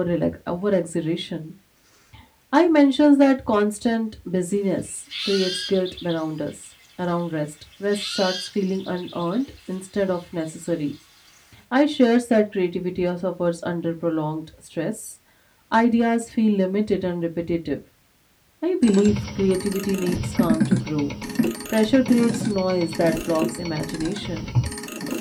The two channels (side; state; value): both; identical; correlation 1.00